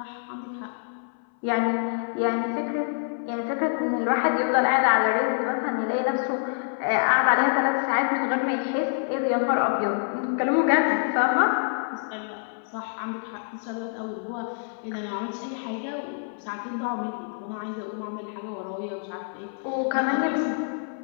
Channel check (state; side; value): silent; right; 61 dB below the other